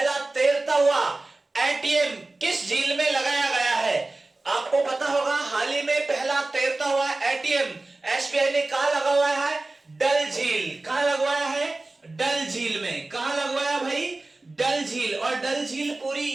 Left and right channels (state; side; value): quieter; left; 3.1 dB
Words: तैरता हुआ एटीएम किस झील में लगाया गया है? आपको पता होगा, हाल ही में पहला तैरता हुआ एटीएम एसबीआई ने कहां लगवाया है? डल झील। कहां लगवाया है? डल झील में। कहां लगवाया भाई? डल झील। और डल झील पूरी